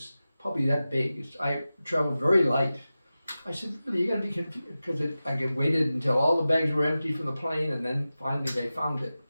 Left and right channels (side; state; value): both; inverted; correlation -0.95